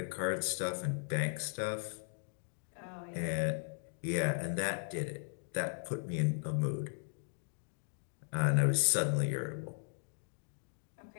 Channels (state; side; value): silent; right; digital silence